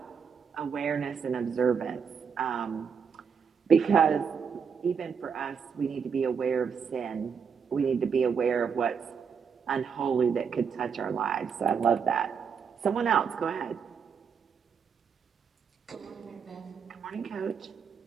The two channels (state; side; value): quieter; left; 6.5 dB